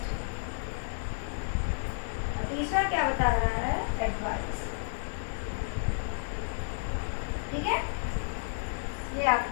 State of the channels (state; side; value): silent; right; digital silence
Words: तीसरा क्या बता रहा है? एडवाइस। ठीक है, ये